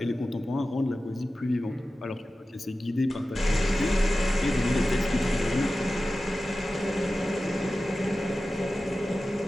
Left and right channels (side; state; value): both; normal; correlation 0.95